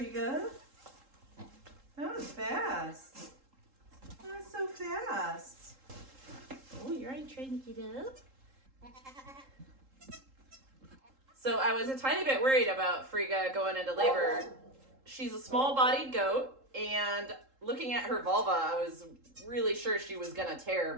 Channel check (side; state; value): left; late; 3.7 ms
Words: That was fast. That was so fast. Oh, you're already trying to get up? So I was a tiny bit worried about Frigga going into labor. She's a small-bodied goat, and looking at her vulva, I was really sure she was gonna tear,